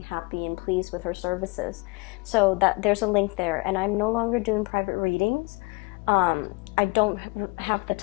happy and pleased with her services. So that there's a link there. And I'm no longer doing private readings. I don't have the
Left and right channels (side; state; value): right; quieter; 27.9 dB